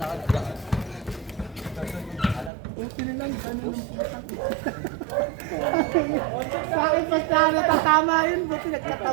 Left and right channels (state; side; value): drops out; left; at 2.5 s